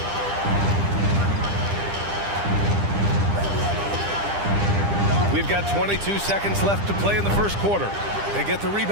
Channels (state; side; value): late; left; 10 ms